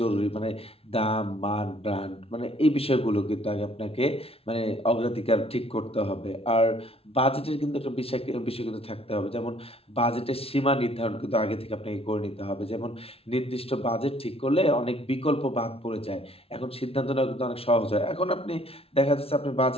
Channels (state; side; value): late; right; 0.28 ms